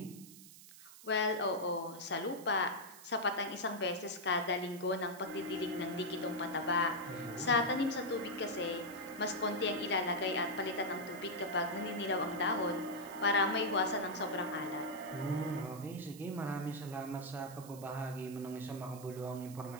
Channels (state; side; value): noise; right; hiss, 18 dB below the sound